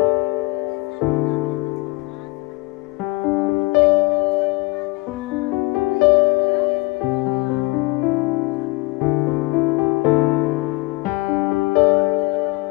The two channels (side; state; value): right; quieter; 23.0 dB